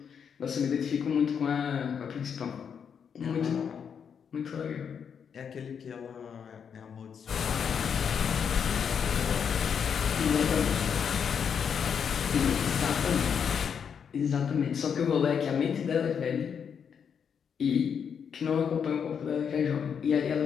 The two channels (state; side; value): quieter; right; 7.2 dB